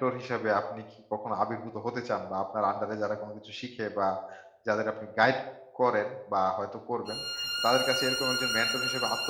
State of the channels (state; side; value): identical; both; correlation 1.00